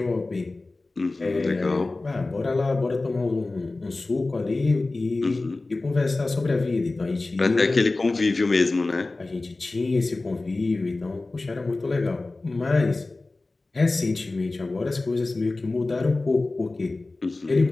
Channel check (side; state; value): right; quieter; 3.2 dB